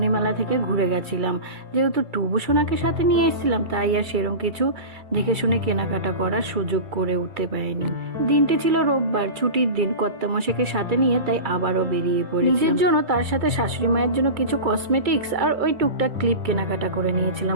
মেলা থেকে ঘুরে গেছিলাম। যেহেতু টুবুসোনাকে সাথে নিয়ে এসেছিলাম তাই আর সেরকম কিছু দেখে শুনে কেনাকাটা করার সুযোগ করে উঠতে পারিনি। দিনটি ছিল রোববার, ছুটির দিন, কর্তামশাইকে সাথে নিয়ে তাই আবারও বেরিয়ে পড়ি। নিজের জন্য, তার সাথে শাশুড়ি মায়ের জন্য কিছু কসমেটিক্স আর ওই টুকটাক ক্লিপ কেনাকাটা করে নিয়েছিলাম।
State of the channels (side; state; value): left; late; 2.3 ms